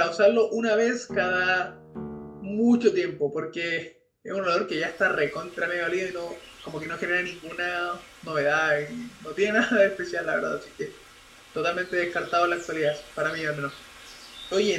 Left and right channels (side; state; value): both; identical; correlation 1.00